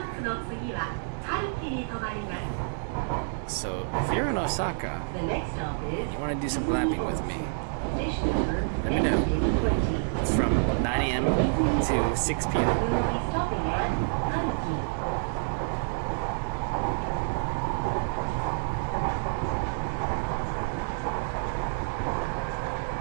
So if you're in Osaka, The next stop is you want to do some glamping with me, station number let me know. NK20. It's from 9 a.m. to 6 p.m. We will be stopping at Hanki.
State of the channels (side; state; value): left; silent; digital silence